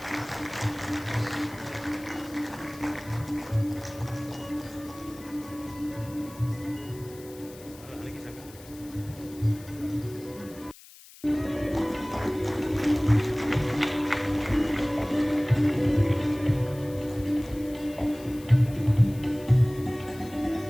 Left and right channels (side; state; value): left; noise; hiss, 20 dB below the sound